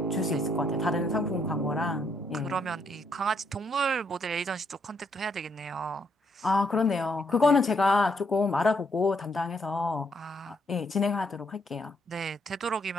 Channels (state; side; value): normal; both; correlation 0.73